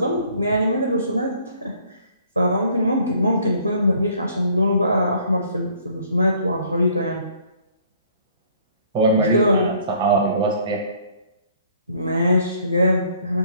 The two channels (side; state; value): both; inverted; correlation -0.60